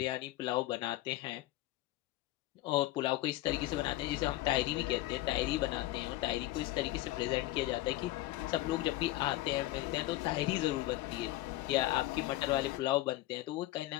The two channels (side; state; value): right; quieter; 16.6 dB